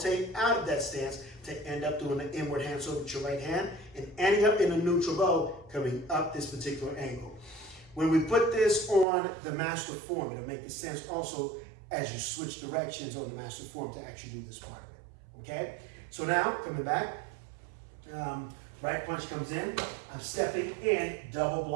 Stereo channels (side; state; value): left; drops out; at 9.1 s